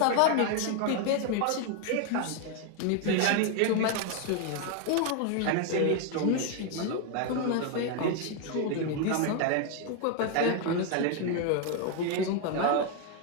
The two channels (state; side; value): different; both; correlation 0.01